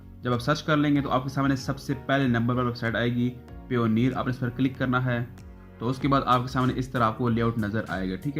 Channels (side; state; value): both; identical; correlation 1.00